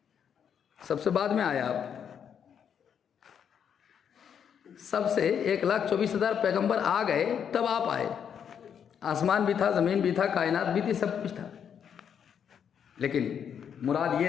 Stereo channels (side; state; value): right; quieter; 8.0 dB